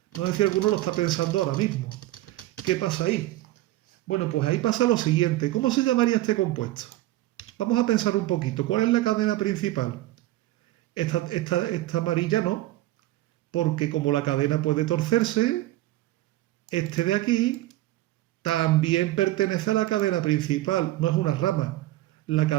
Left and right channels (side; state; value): left; quieter; 16.3 dB